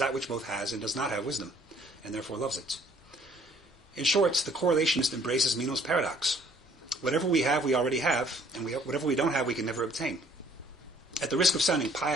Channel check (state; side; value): normal; both; correlation 0.59